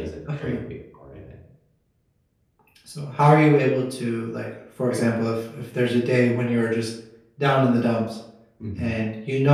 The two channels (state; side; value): identical; both; correlation 1.00